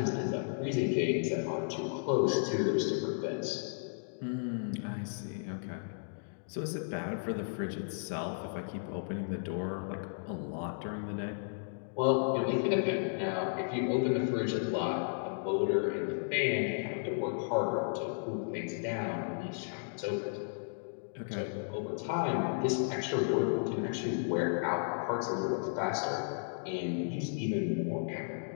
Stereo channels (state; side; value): silent; right; digital silence